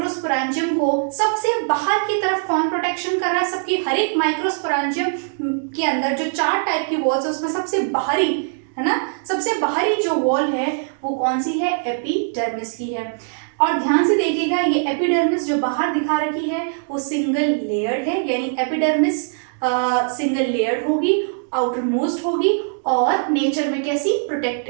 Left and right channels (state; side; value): silent; left; digital silence